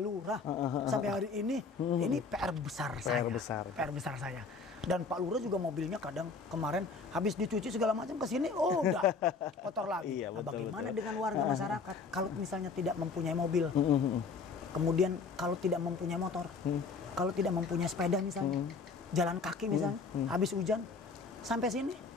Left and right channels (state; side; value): quieter; right; 4.6 dB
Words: sampai hari ini PR besar saya. PR besar saya. Dan Pak Lurah juga mobilnya kadang kemarin habis dicuci segala macam ke sini, oh udah kotor lagi. Iya, Nah, betul, bagaimana betul. dengan warga masyarakat kalau misalnya tidak mempunyai mobil, kemudian kalau tidak mempunyai motor, kalau tidak mempunyai sepeda misalnya, jalan kaki misalnya, habis hujan sampai sini,